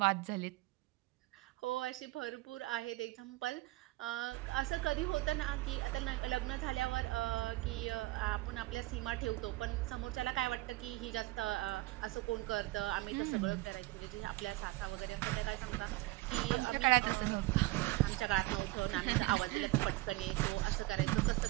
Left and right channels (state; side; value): quieter; left; 20.0 dB